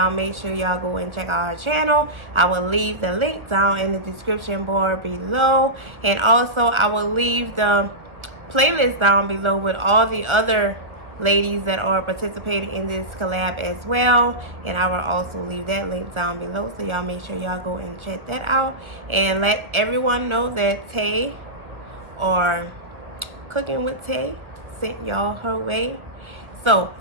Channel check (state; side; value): late; left; 1.4 ms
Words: make sure y'all go and check out her channel. I will leave the link down in the description bar below, and also I will leave the playlist down below with all the other ladies that are participating in this collab as well, and I will also leave that link down below, so y'all make sure y'all go and check that out and let everyone know that Tay or Cooking with Tay sent y'all her way. So